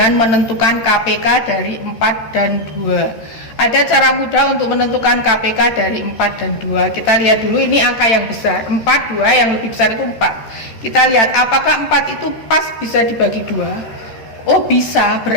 menentukan KPK dari 4 dan 2. Ada cara mudah untuk menentukan KPK dari 4 dan 2. Kita lihat dulu, ini angka yang besar. 4, 2, yang lebih besar itu 4. Kita lihat apakah 4 itu pas bisa dibagi 2. Oh bisa,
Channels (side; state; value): right; late; 13 ms